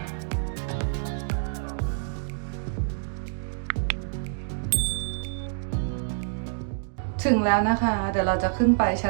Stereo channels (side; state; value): left; silent; digital silence